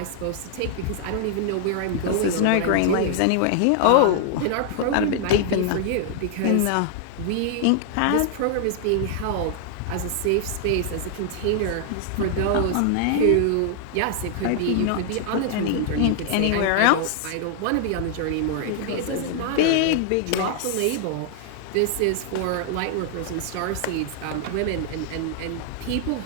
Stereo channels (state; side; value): different; both; correlation 0.00